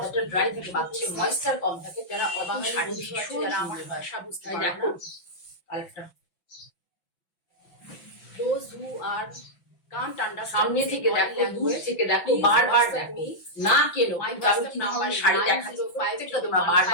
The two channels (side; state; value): right; late; 5.8 ms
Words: ড্রাই থাকে, বাচ্চা ময়েশ্চার কম থাকে, যারা অবাঙালি শাড়ি ভীষণ, যারা আমার ভাষা বুঝতে পারে না, কালারটা those who are can't understand, সামনে থেকে দেখো, দূর থেকে দেখো, বারবার দেখো, না কেন আমার শাড়ি দেখাচ্ছি, প্রত্যেকটা তোমরা